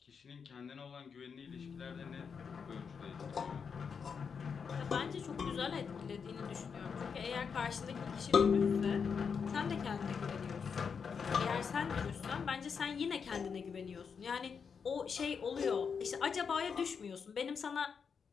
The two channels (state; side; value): quieter; right; 6.2 dB